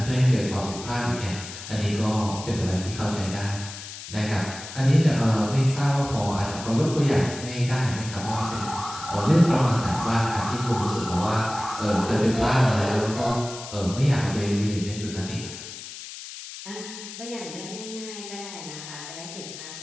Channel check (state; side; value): noise; left; hiss, 12 dB below the sound